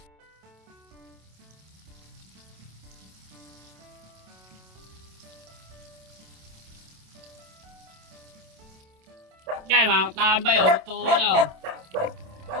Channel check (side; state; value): left; late; 27 ms